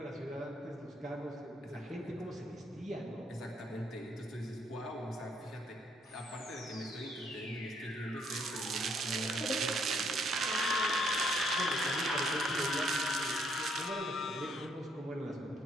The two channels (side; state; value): both; normal; correlation 0.70